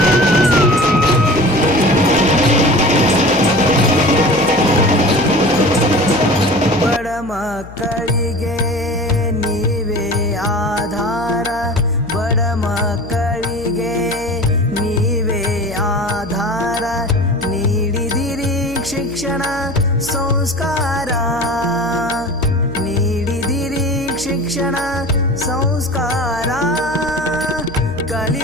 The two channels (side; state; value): left; noise; hum, 16 dB below the sound